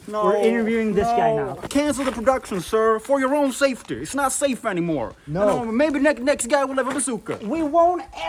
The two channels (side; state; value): both; identical; correlation 1.00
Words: No, We're interviewing this guy now. Cancel the production, sir, for your own safety. It's not safe anymore. No. Maybe next guy will have a bazooka. We won't